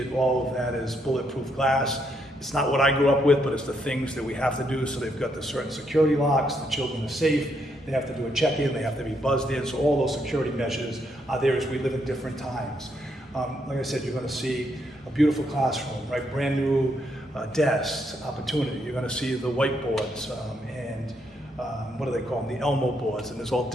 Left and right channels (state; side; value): normal; both; correlation 0.76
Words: all of that is bulletproof glass. It's not what I grew up with, but it's the things that we have to do. So they've got the certain security locks, the children are safe, they have to do a check-in, they have to be buzzed in. So all those security measures are there as we live in different times. Like I said, you're gonna see a beautiful classroom, right? Brand new desks, opportunity. You're gonna see the whiteboards and what do they call them? The Elmo boards, and there's all